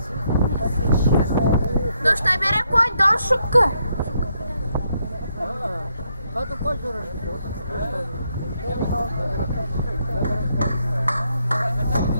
No šta, bere konj, došuka? Hadi koy görürüz.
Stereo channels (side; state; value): both; inverted; correlation -0.77